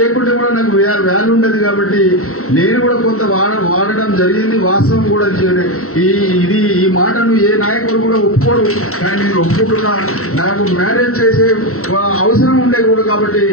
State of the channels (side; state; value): right; late; 0.63 ms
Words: కూడా నాకు వాల్యూ ఉండదు. కాబట్టి నేను కూడా కొంత వాడడం జరిగింది. వాస్తవం కూడా ఈ మాటను ఏ నాయకుడు కూడా ఒప్పుకోడు. కానీ నేను ఒప్పుకుంటున్నా. నాకు మ్యారేజ్ చేసే అవసరం ఉండే కూడా కాబట్టి